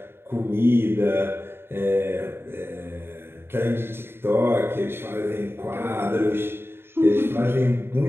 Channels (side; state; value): left; late; 0.11 ms